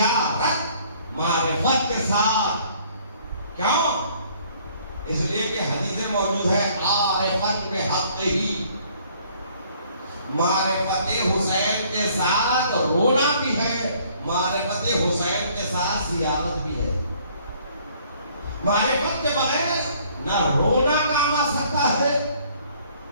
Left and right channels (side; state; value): both; inverted; correlation -0.60